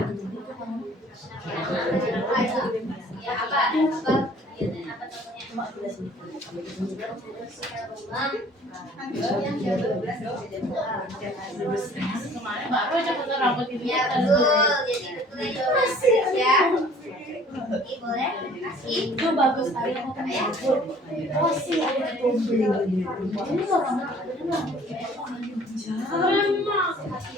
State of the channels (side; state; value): both; normal; correlation 0.54